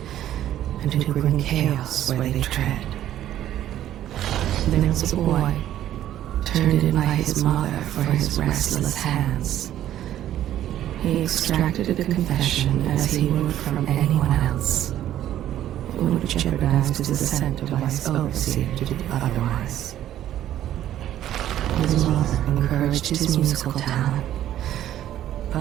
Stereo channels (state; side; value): quieter; left; 12.1 dB